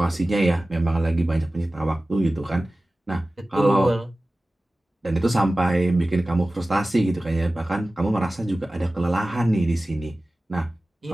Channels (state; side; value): normal; both; correlation 0.96